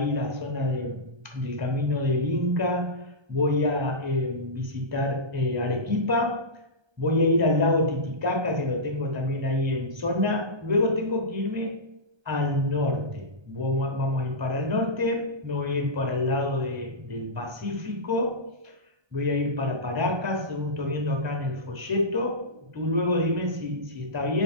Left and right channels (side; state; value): left; late; 1.3 ms